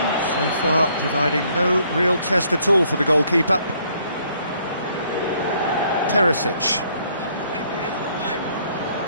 so far providing no real test at all for the goalkeeper. Perisic.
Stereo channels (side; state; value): both; inverted; correlation -0.66